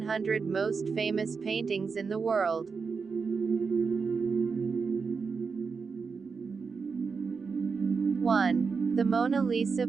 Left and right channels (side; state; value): left; quieter; 5.2 dB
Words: most famous paintings in the world. 1. The Mona Lisa